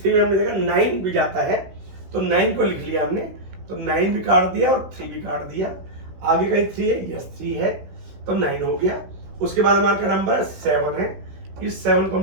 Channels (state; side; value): late; left; 16 ms